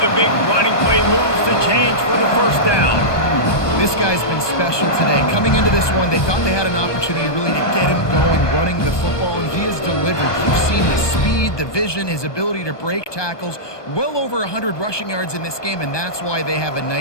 the big running play moves to change for the 1st down. This guy's been special today. Coming into this one, they thought they had an opportunity really to get him going, running the football, and he has delivered. You've seen the speed, the vision, his ability to break tackles. Well over 100 rushing yards in this game, and that's why they have a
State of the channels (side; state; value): right; late; 1.2 ms